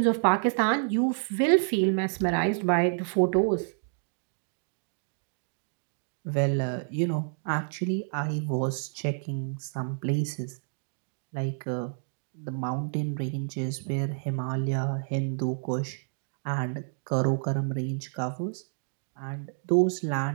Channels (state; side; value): silent; left; digital silence